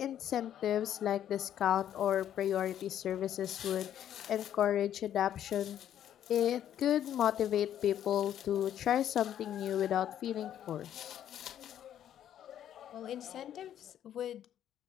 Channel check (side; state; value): right; quieter; 10.6 dB